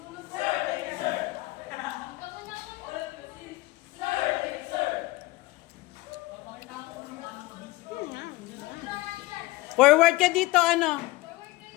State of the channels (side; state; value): right; quieter; 19.8 dB